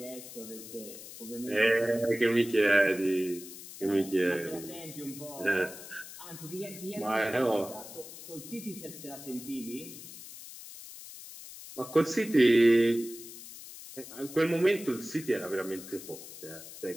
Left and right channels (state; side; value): noise; left; hiss, 14 dB below the sound